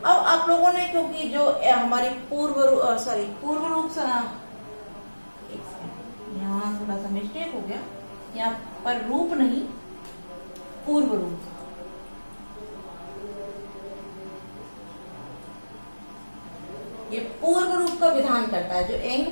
अब आप लोगों ने, क्योंकि जो हमारी पूर्व रूप से, यहाँ थोड़ा सा मिस्टेक हो गया, यहाँ पर रूप नहीं, पूर्व रूप, ये पूर्व रूप का विधान करता है। जो एंग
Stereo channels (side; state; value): both; inverted; correlation -1.00